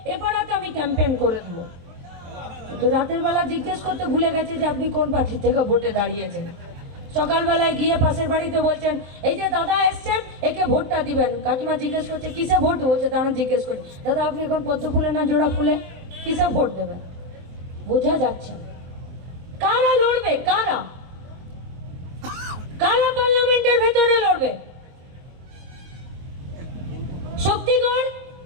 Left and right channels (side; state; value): left; late; 23 ms